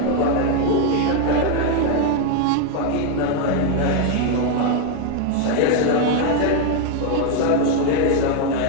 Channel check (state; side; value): different; both; correlation 0.01